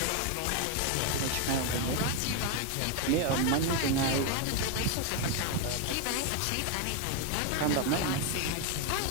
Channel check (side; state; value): both; different; correlation 0.01